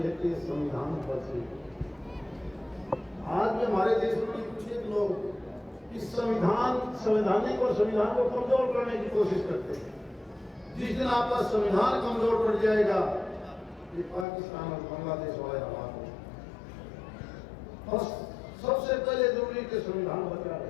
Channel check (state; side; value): drops out; right; at 14.2 s